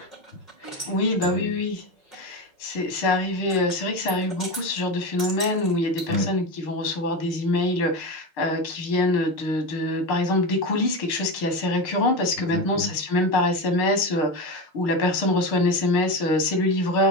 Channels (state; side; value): late; right; 6.5 ms